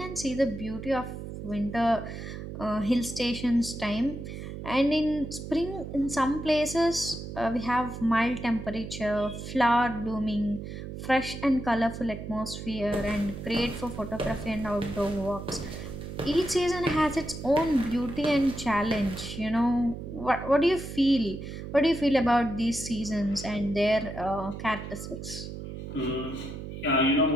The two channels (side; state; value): right; noise; hum, 9 dB below the sound